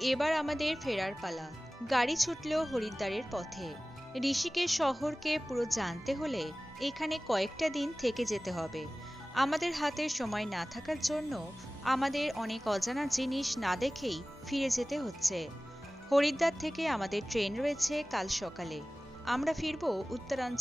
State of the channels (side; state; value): both; normal; correlation 0.97